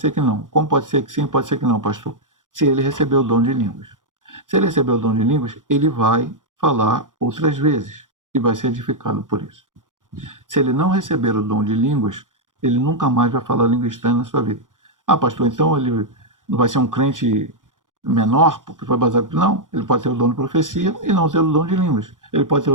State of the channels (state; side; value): late; left; 0.88 ms